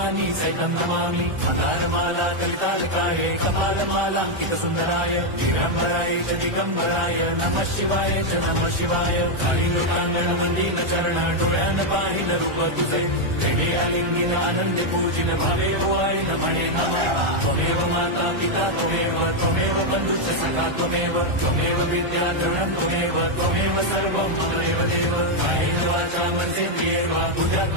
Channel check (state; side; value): late; left; 1.4 ms